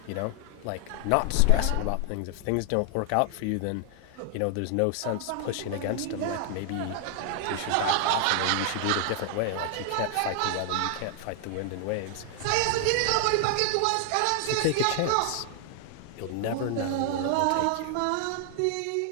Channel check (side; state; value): both; different; correlation 0.00